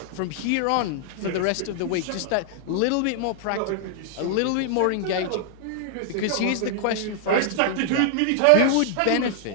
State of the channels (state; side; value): different; both; correlation 0.00